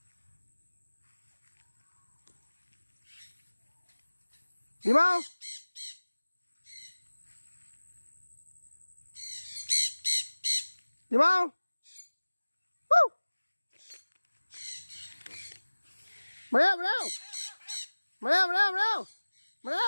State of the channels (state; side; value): inverted; both; correlation -1.00